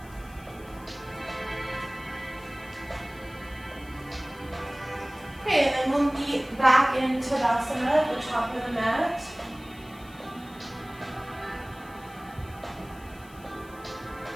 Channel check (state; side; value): noise; left; hiss, 24 dB below the sound